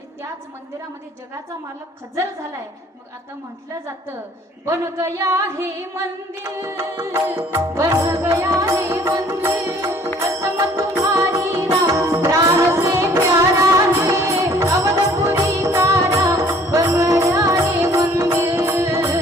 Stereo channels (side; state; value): both; normal; correlation 0.55